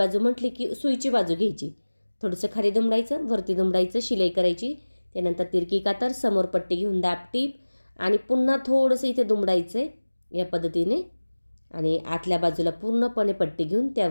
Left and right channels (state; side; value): inverted; both; correlation -1.00